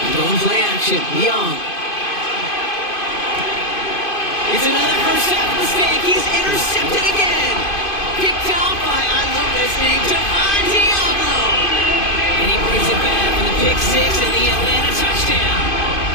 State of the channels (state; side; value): late; right; 2.5 ms